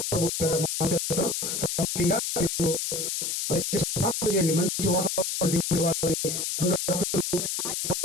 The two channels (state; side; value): noise; left; hiss, 2 dB below the sound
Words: ప్రభు పేరిట మనం చేస్తాం. ముఖ్యంగా మీరు దయచేసి ప్రార్థన చేయండి. మంచి వాతావరణం దేవుడి వాళ్ళని రెండు రాత్రులు